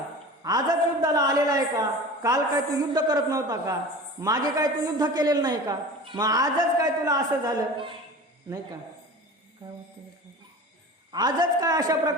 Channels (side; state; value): both; normal; correlation 0.36